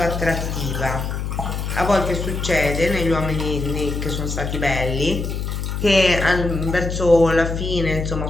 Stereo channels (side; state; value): left; noise; hum, 3 dB below the sound